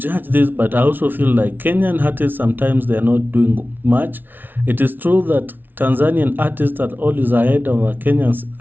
this, but I also feel like Kenyan artists sometimes they are not doing much. It is true that Tanzanian artists are always ahead of our Kenyan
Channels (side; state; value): left; late; 0.092 ms